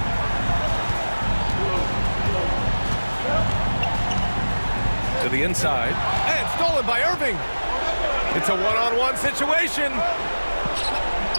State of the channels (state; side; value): inverted; both; correlation -1.00